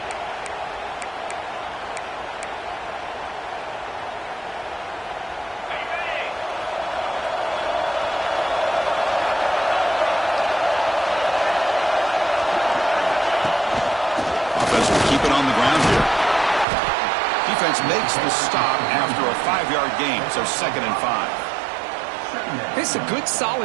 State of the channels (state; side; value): drops out; left; at 16.7 s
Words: Keep it on the ground here. Defense makes the stop after a 5-yard gain, so 2nd and 5. It's a good,